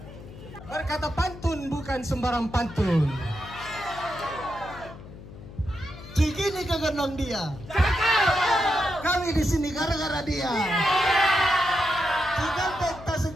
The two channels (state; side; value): noise; left; hum, 16 dB below the sound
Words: Berkata pantun bukan sembarang pantun. Cikini kegendong dia. Kami di sini gara-gara dia. Cikampek